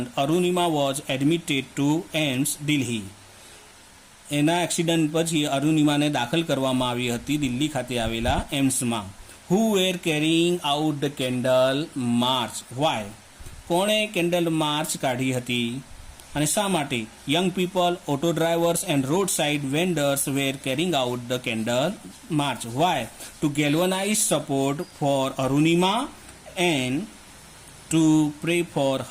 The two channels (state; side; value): identical; both; correlation 1.00